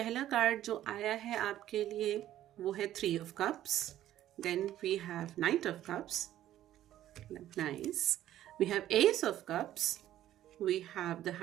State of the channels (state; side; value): quieter; left; 12.8 dB